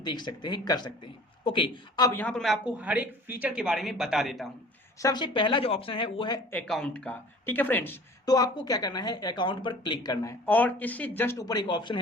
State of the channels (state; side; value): normal; both; correlation 0.47